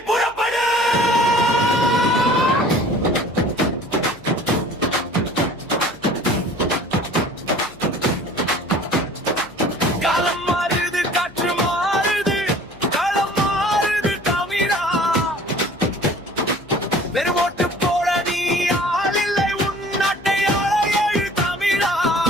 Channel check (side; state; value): left; noise; hum, 26 dB below the sound